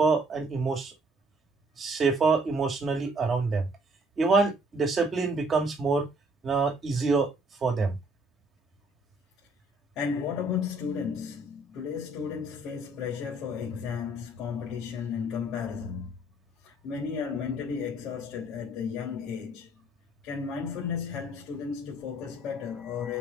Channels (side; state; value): both; normal; correlation 0.61